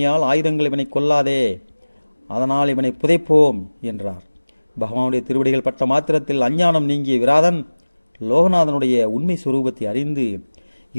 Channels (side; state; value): both; inverted; correlation -1.00